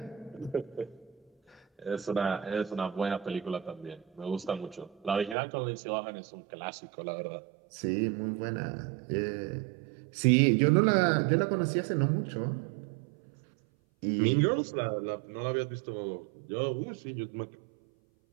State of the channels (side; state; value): left; drops out; at 5.4 s